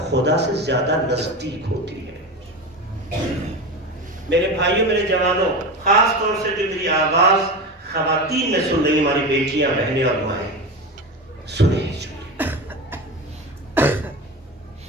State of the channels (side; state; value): both; normal; correlation 0.24